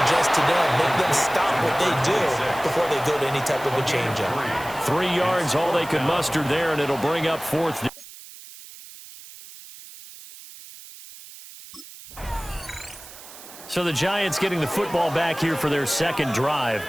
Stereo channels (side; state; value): right; noise; hiss, 17 dB below the sound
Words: adjust to them. Make them stop what they do before they go to any type of a change-up. 3 yards, all they could muster there, and it'll bring up fourth down. So the Giants getting the football back here for their second drive.